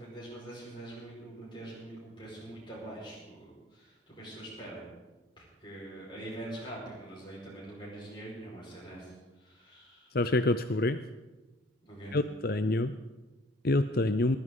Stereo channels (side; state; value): both; normal; correlation 0.54